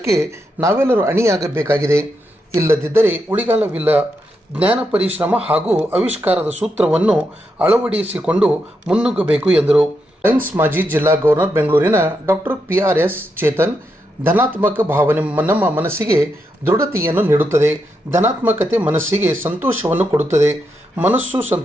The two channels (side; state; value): both; normal; correlation 0.83